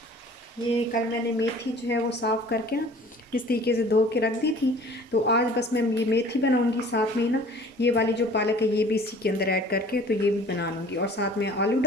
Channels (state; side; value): normal; both; correlation 0.48